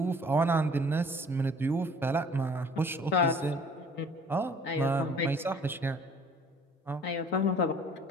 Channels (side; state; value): both; normal; correlation 0.52